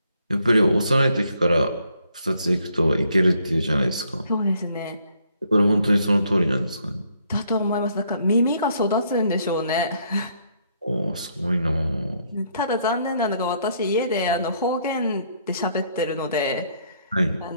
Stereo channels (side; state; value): both; inverted; correlation -0.69